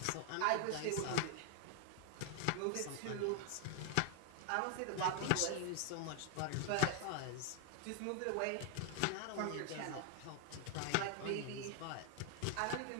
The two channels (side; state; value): both; different; correlation 0.00